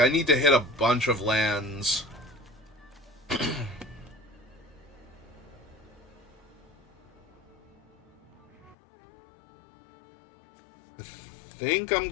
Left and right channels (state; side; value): drops out; right; at 8.8 s